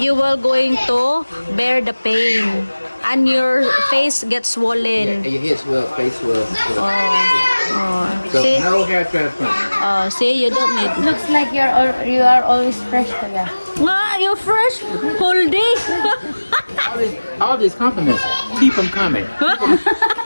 will going to bear the pain. And your face gets Yeah, swollen. and your head swell, face swell. So See? no hair transplant. See, you don't need. Looks like you are always fresh, kuya. Ah, you're fresh whole day. All these compliments, keep them coming.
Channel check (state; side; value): inverted; both; correlation -1.00